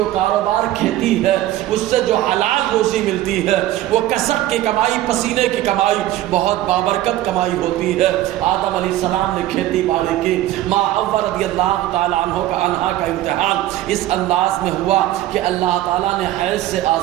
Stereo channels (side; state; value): left; quieter; 14.3 dB